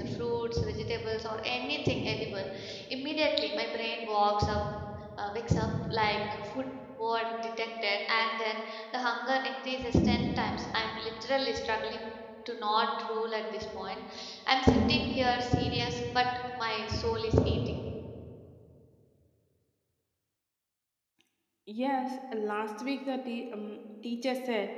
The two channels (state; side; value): identical; both; correlation 1.00